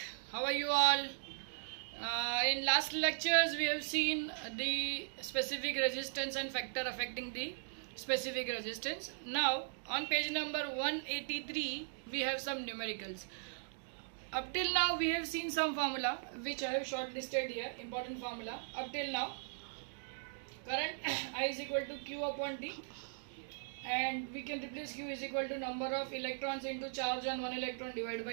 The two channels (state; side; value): silent; left; digital silence